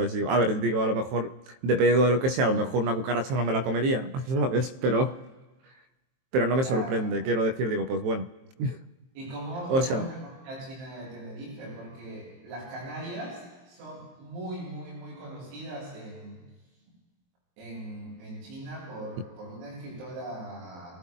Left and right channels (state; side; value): late; left; 23 ms